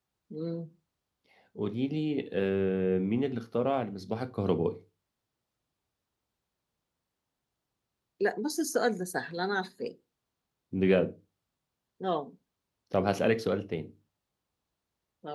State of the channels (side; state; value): both; identical; correlation 1.00